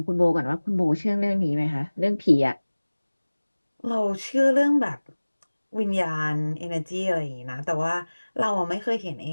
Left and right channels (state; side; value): inverted; both; correlation -1.00